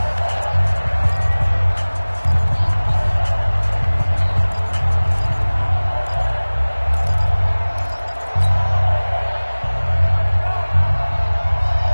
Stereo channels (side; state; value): both; inverted; correlation -1.00